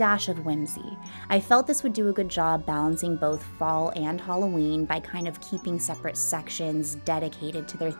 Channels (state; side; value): inverted; both; correlation -1.00